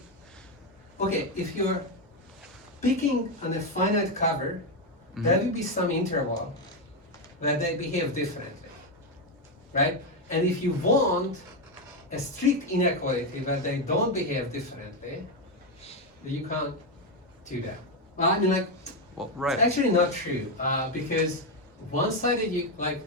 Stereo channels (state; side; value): normal; both; correlation 0.07